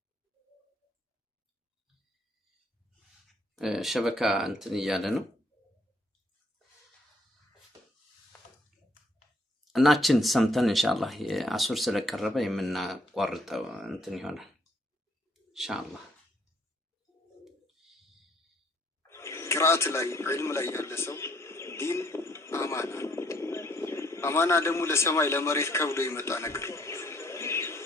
ሸበካ እንትን እያለ ነው እናችን ሰምተን ኢንሻአላህ አሱር ስለቀረበ የምናቋርጠው እንትን ይሆናል ኢንሻአላህ። ቅራአት ላይ ዒልም ላይ ያለ ሰው ዲን አማና ደግሞ ለሰማይ ለመሬት ከብዶ የመጣ ነገር።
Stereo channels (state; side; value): normal; both; correlation 0.66